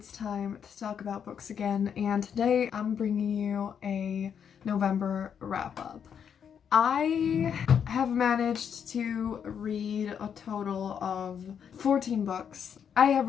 time to talk about books again, and today I'm bringing you a November wrap-up. I have managed to read a total of 14 books. I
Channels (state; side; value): quieter; right; 7.8 dB